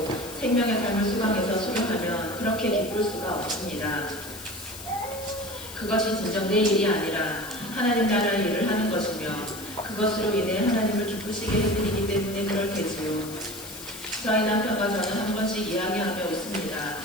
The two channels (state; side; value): noise; left; hiss, 13 dB below the sound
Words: 생명의 삶을 수강해서 수료하면 그렇게 기쁠 수가 없습니다. 그것이 진정 내 일이 아니라 하나님 나라의 일을 하는 것이며 그것으로 인해 하나님을 기쁘시게 해드리기 때문에 그럴 테지요. 저희 남편과 저는 한 번씩 이야기하며 웃습니다.